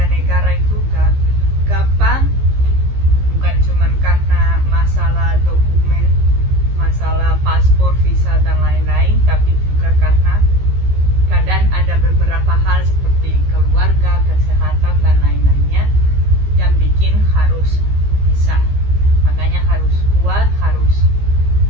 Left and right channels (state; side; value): late; left; 15 ms